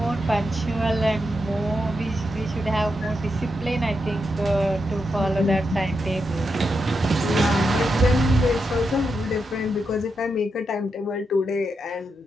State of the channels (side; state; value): both; normal; correlation 0.85